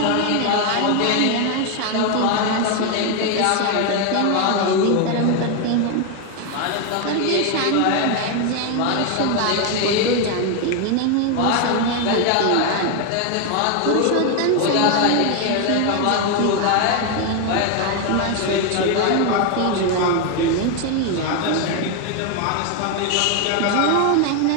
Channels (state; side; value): different; both; correlation 0.01